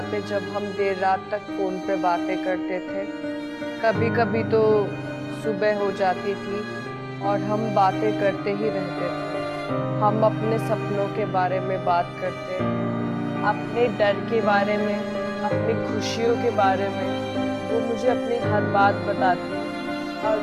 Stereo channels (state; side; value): identical; both; correlation 1.00